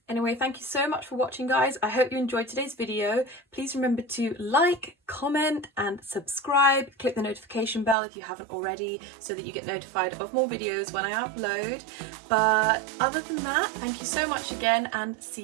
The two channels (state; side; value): drops out; left; at 8.0 s